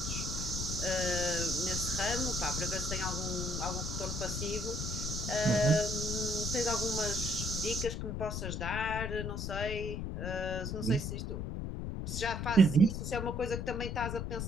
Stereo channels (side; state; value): left; noise; rumble, 3 dB below the sound